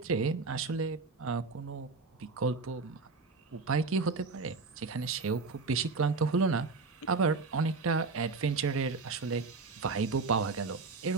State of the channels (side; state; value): left; quieter; 4.2 dB